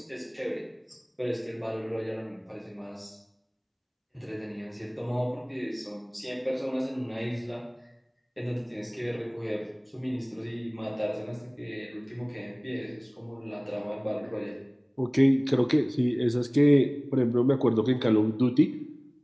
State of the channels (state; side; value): identical; both; correlation 1.00